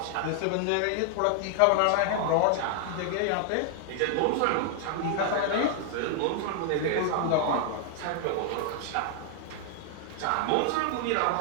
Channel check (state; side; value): different; both; correlation 0.00